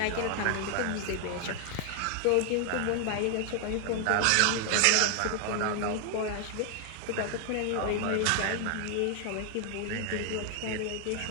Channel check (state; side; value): different; both; correlation 0.00